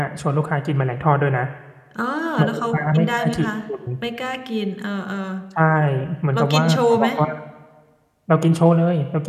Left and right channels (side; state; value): both; identical; correlation 1.00